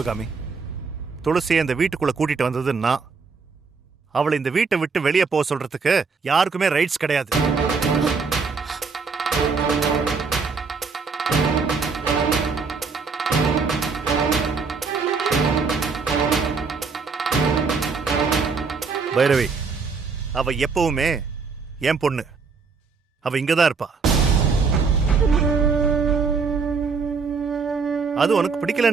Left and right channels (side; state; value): left; quieter; 4.9 dB